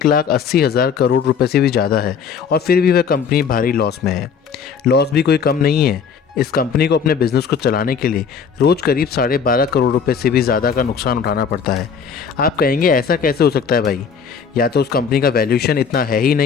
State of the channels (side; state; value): right; quieter; 6.5 dB